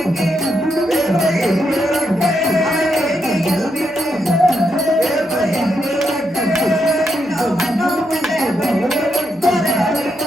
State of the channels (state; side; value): noise; right; hum, 28 dB below the sound